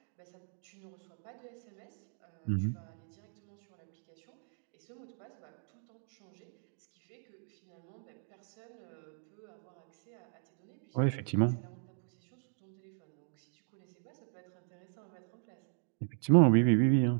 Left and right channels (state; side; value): silent; left; 53 dB below the other